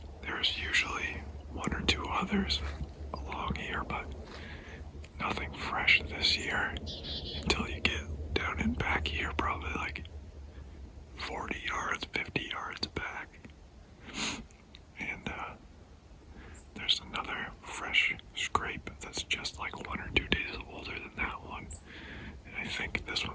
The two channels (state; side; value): identical; both; correlation 1.00